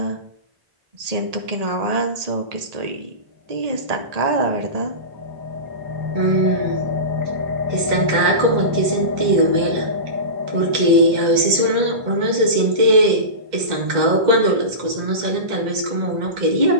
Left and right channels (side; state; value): left; late; 2.0 ms